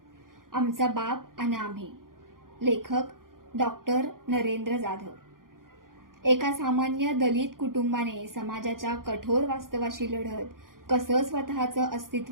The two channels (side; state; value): left; late; 0.91 ms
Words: आमचा बाप आणि आम्ही. लेखक डॉक्टर नरेंद्र जाधव. एका सामान्य दलित कुटुंबाने समाजाच्या कठोर वास्तवाशी लढत कसं स्वतःचं